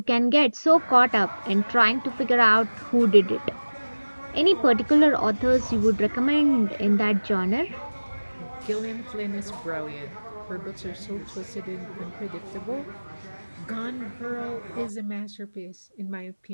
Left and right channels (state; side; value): inverted; both; correlation -1.00